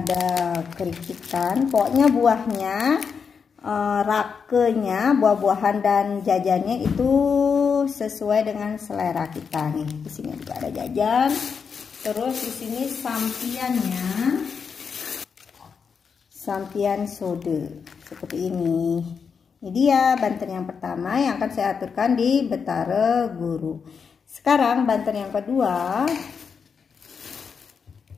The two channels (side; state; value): right; quieter; 6.1 dB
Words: kerikitan. Pokoknya buahnya, rakenya, buah-buahan dan jajannya itu sesuai dengan selera kita nih. Di sini juga ada jajan. Terus di sini sampiannya, sampian sode seperti ini. Ini dia banten yang pertama yang akan saya aturkan di Betara Guru. Sekarang banten yang kedua.